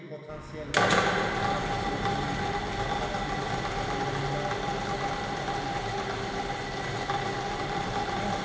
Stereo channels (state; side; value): identical; both; correlation 1.00